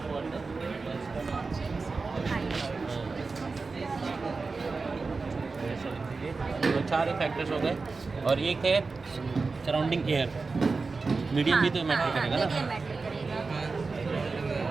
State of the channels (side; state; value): left; quieter; 4.1 dB